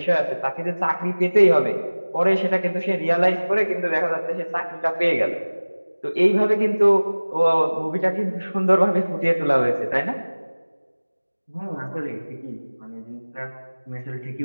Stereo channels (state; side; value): inverted; both; correlation -1.00